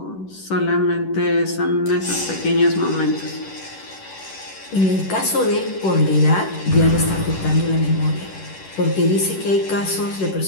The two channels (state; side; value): late; right; 10 ms